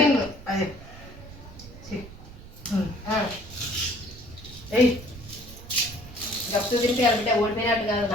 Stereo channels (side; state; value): right; noise; rumble, 17 dB below the sound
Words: గప్పు తింటే బిడ్డ ఓడిపోయినట్టు కాదు.